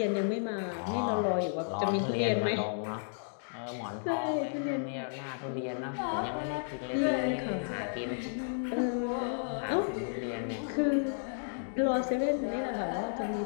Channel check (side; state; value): right; silent; digital silence